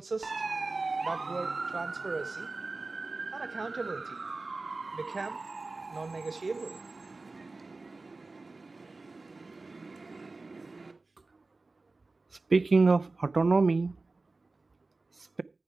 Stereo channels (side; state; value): left; quieter; 3.5 dB